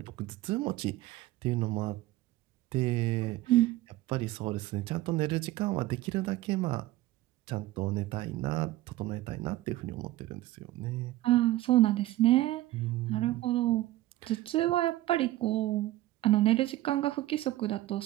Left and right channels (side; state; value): left; quieter; 16.2 dB